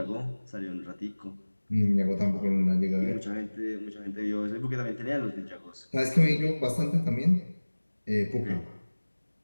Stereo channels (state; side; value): inverted; both; correlation -1.00